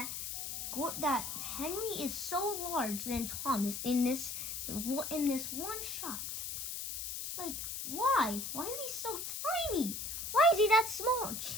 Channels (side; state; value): left; noise; hiss, 5 dB below the sound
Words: Henry is so large than Thomas in this one shot. Like, why? Why is he so tiny? Why is he that small?